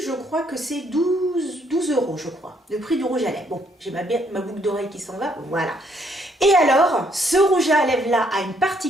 je crois que c'est 12 euros, je crois, le prix du rouge à lèvres. Bon, j'ai ma boucle d'oreille qui s'en va, voilà. Et alors, ce rouge à lèvres là a une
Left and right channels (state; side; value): normal; both; correlation 0.69